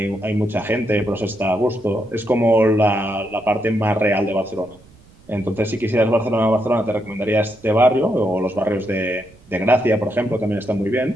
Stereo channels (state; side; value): noise; right; rumble, 26 dB below the sound